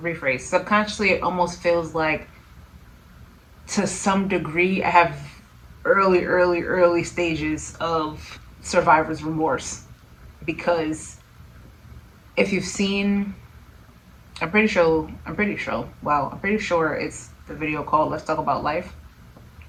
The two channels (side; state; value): both; identical; correlation 1.00